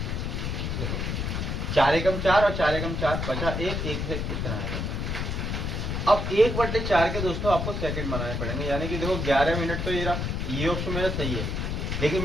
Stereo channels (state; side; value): noise; left; rumble, 2 dB below the sound